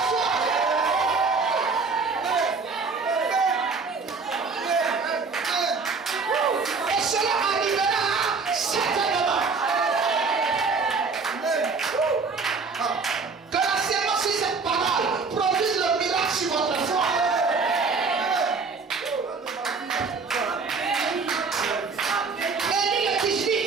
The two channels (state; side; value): quieter; left; 4.6 dB